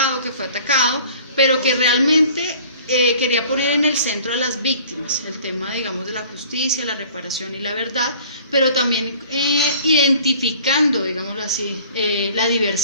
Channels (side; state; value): both; inverted; correlation -0.50